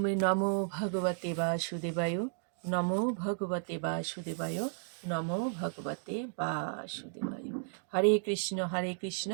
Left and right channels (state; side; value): silent; left; 55 dB below the other